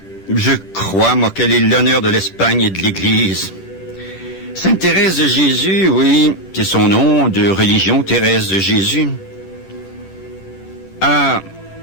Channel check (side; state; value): right; late; 10 ms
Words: je crois, moi, qu'elle est l'honneur de l'Espagne et de l'Église. Sainte Thérèse de Jésus, oui, c'est son nom de religion, Thérèse de Jésus, a